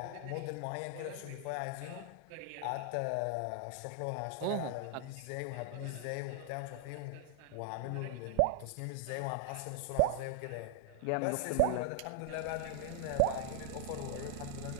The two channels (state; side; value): different; both; correlation 0.00